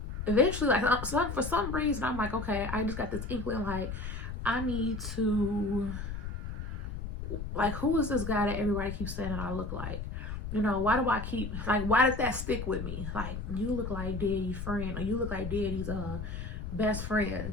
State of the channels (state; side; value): noise; left; rumble, 6 dB below the sound